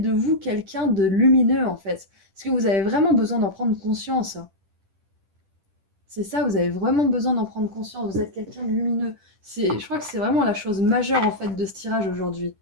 vous quelqu'un de lumineux en fait. Parce que vous avez vraiment besoin d'en prendre conscience. C'est ça, vous avez vraiment besoin d'en prendre conscience. Vous êtes quelqu'un de lumineux. Je crois que c'est vraiment la chose majeure en fait de ce tirage aujourd'hui.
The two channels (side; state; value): left; late; 10 ms